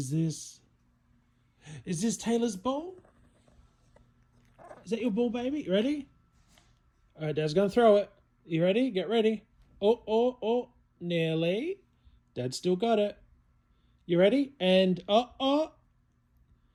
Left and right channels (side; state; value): both; identical; correlation 1.00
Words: this? Is this Taylor's ball? Is that your ball, baby? You ready? All right, Dad's going to throw it. You ready? Get ready. Oh. Nearly. Dad still got it. You ready? And